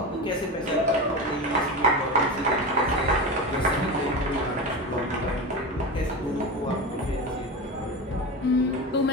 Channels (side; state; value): both; normal; correlation 0.24